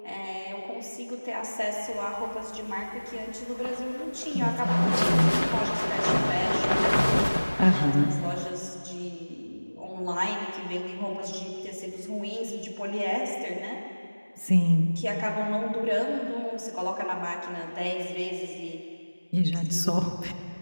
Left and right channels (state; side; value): inverted; both; correlation -1.00